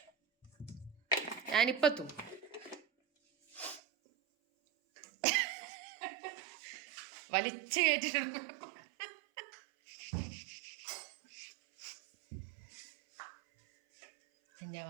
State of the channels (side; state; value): left; drops out; at 3.8 s